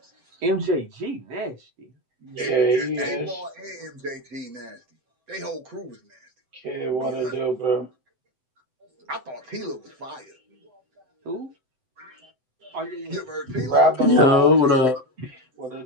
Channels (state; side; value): late; left; 7.8 ms